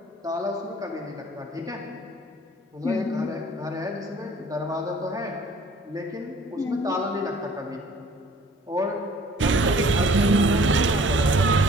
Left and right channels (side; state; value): both; normal; correlation 0.53